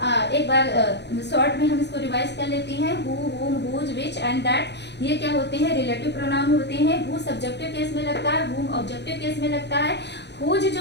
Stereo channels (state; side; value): late; right; 0.50 ms